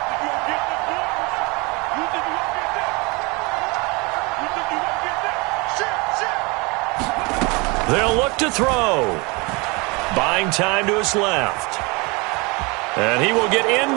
You won't get this one. You think you won't get that? You think you won't get that? Shit. They'll look to throw. Buying time to his left. And he will get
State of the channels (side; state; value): left; quieter; 27.4 dB